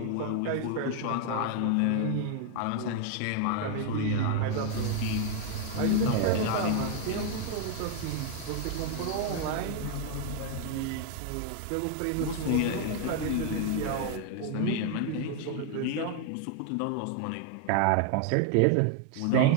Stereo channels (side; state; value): both; different; correlation 0.00